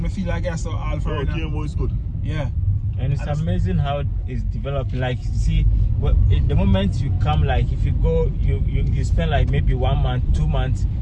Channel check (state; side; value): identical; both; correlation 1.00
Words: me feel like I saw all for right now. Kiambu is good. Yeah. And it's amazing how it's developing. Like, you see, the moment you come, like, if you go, you spend like maybe 1 month, 2 months,